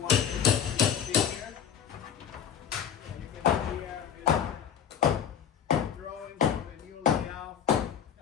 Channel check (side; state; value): right; quieter; 8.5 dB